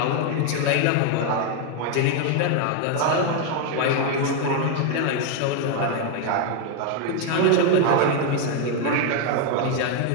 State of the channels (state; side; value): different; both; correlation 0.01